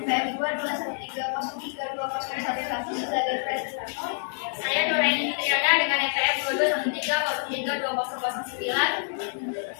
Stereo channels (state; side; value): silent; right; 60 dB below the other